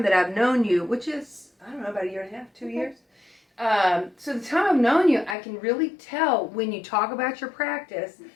that I've known you, which is, about a year and a half, 2 years. So the time I've known you, I can really tell when you talk about your practice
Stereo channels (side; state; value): right; drops out; at 5.4 s